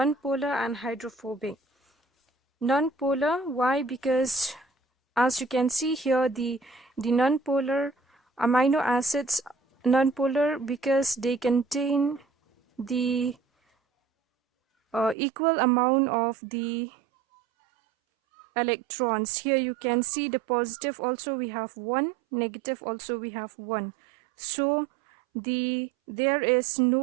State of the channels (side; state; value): left; drops out; at 15.2 s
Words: and hydrophobic. Non-polar, why? Because as you can see here, the non-polar amino acids, non-polar because they contain the equal amount of the electrons. Here you can see the positive also we have one, negative also we have one. So there is